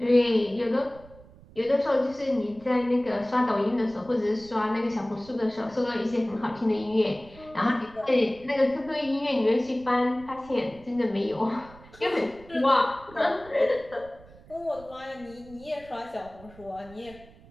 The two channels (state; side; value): noise; right; rumble, 22 dB below the sound